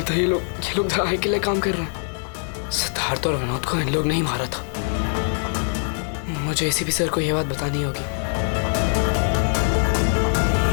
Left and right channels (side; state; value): right; silent; digital silence